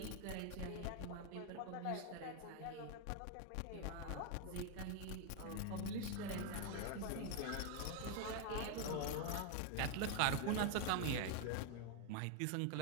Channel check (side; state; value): both; different; correlation 0.01